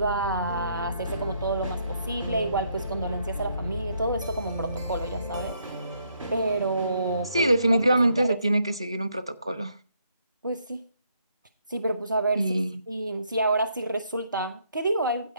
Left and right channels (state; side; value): inverted; both; correlation -0.73